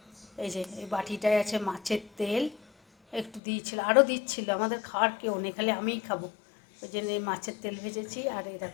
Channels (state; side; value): drops out; right; at 3.4 s